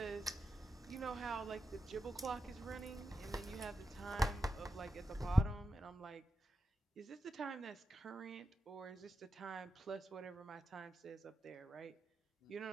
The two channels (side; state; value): both; normal; correlation 0.89